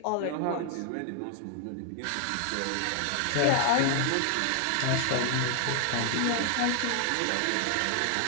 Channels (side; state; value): both; different; correlation 0.00